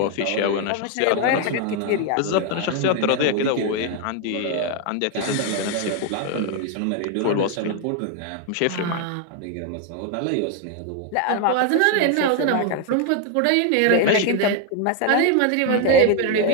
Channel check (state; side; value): different; both; correlation 0.01